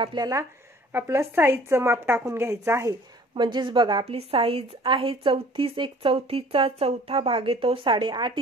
आपलं साईजचं माप टाकून घ्यायचं आहे. म्हणजेच बघा आपली साईज आहे 34, 1/4चा चौथा भाग येतो 8.5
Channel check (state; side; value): normal; both; correlation 0.51